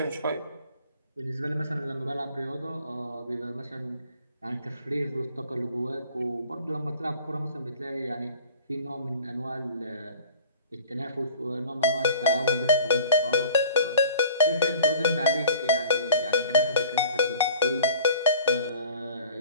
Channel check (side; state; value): both; inverted; correlation -0.46